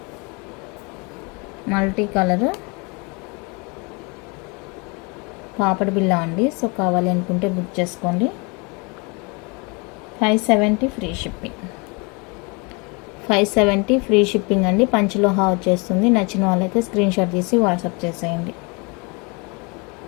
మల్టీ కలర్ పాపడి బిళ్ళ అండి. సో కావాలి అనుకుంటే బుక్ చేసుకోండి. 570 ఫ్రీ షిప్పింగ్, 570 ఫ్రీ షిప్పింగ్ అండి. పంచలోహ వచ్చేస్తుంది. నచ్చిన వాళ్ళైతే స్క్రీన్ షాట్ తీసి వాట్సాప్ చేసేయండి.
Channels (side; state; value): right; quieter; 30.2 dB